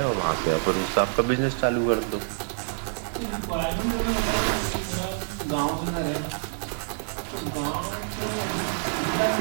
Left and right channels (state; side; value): silent; left; digital silence